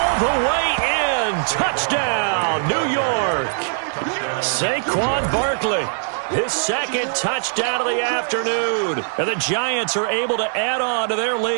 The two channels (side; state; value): left; silent; digital silence